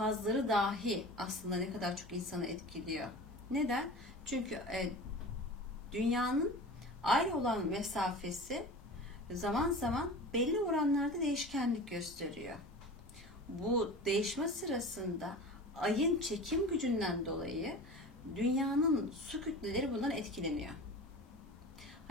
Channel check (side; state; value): both; normal; correlation 0.35